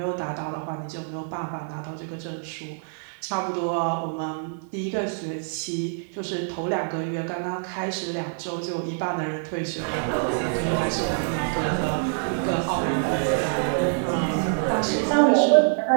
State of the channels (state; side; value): silent; left; 61 dB below the other